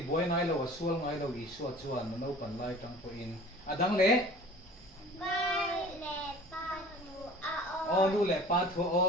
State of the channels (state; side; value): normal; both; correlation 0.44